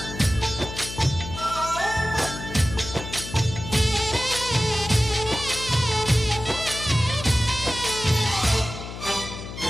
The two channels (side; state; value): left; noise; hum, 10 dB below the sound